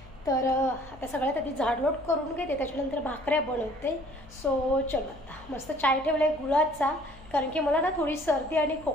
तर आता सगळ्यात आधी झाडलोट करून घेते, त्याच्यानंतर भाकऱ्या बनवते. सो चलो आता मस्त चाय ठेवला आहे गुळाचा, कारण की मला ना थोडी सर्दी आणि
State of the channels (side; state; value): left; noise; hum, 21 dB below the sound